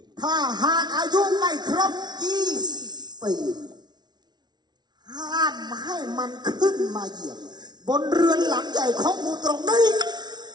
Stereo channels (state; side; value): late; left; 0.20 ms